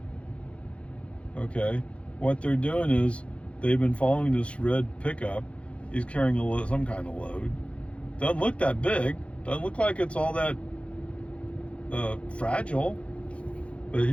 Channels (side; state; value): right; late; 0.061 ms